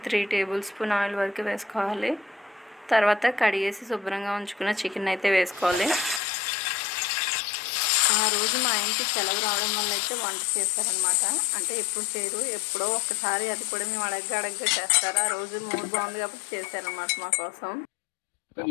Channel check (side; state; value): right; drops out; at 6.2 s